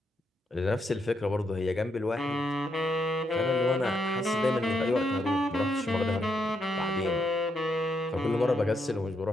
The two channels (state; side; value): normal; both; correlation 0.79